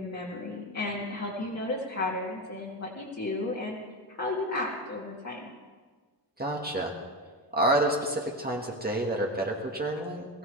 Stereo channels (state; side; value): normal; both; correlation 0.19